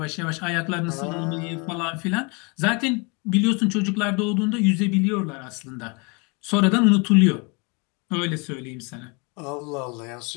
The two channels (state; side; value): quieter; right; 31.0 dB